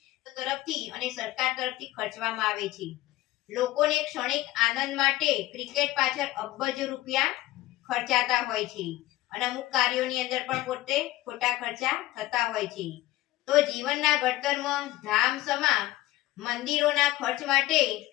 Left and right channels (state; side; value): quieter; right; 16.7 dB